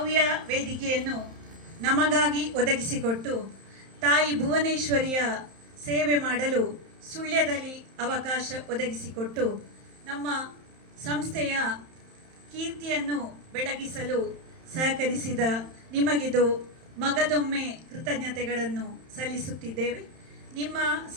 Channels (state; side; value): late; left; 31 ms